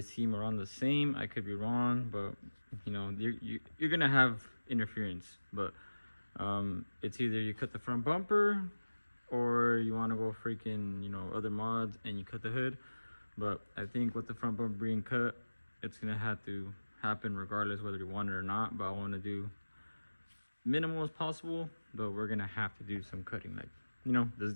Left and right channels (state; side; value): inverted; both; correlation -1.00